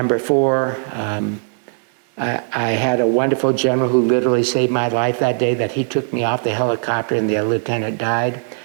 four, I had a wonderful general who literally saved my life that day, that he took me off the helicopter and the lieutenant died.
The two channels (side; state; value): left; silent; digital silence